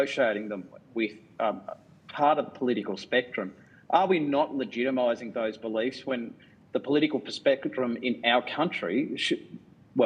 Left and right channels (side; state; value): both; identical; correlation 1.00